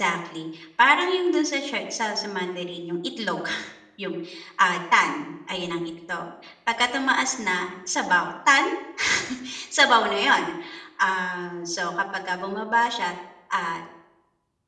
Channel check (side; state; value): both; identical; correlation 1.00